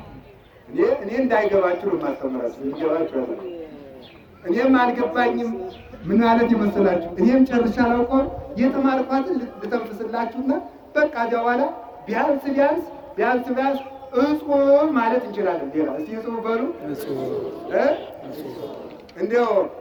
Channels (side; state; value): both; identical; correlation 1.00